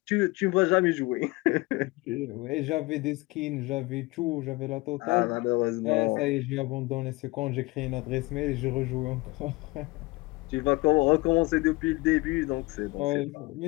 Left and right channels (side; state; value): right; quieter; 22.8 dB